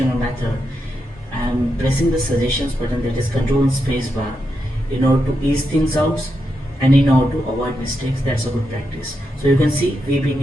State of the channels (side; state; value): both; normal; correlation 0.85